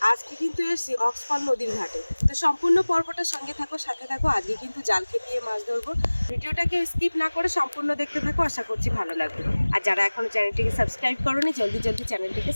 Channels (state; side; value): inverted; both; correlation -1.00